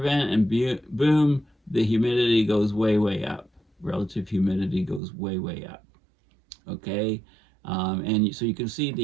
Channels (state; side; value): drops out; left; at 5.0 s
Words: and boom, the humidity goes way, way up. Relative humidity goes way, way up. Okay, and so you can see